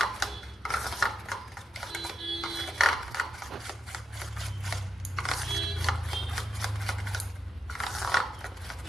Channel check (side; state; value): both; normal; correlation 0.85